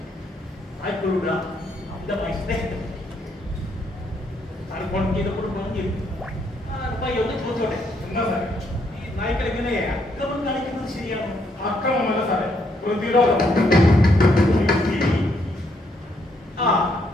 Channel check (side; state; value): both; normal; correlation 0.73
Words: നായ്ക്കളുടെ അമിതമായ സ്നേഹത്തെ പറ്റി സാർ ഫോൺ ചെയ്തപ്പോൾ പറഞ്ഞിരുന്നു. പപ്പായി ഒന്ന് ചോദിച്ചോട്ടെ, എന്താ സാറേ ഈ നായ്ക്കൾ എങ്ങനെ അക്രമം കാണിക്കുന്നത് ശരിയാണോ? അക്രമമല്ല സാറേ, പ്രതിരോധം. ആ